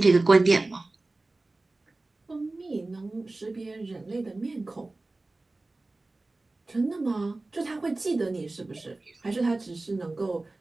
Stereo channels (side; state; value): left; quieter; 3.1 dB